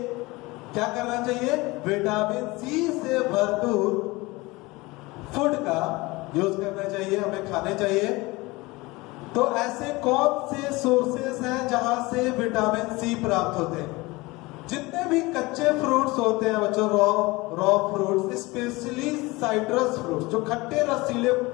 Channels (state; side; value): quieter; right; 22.4 dB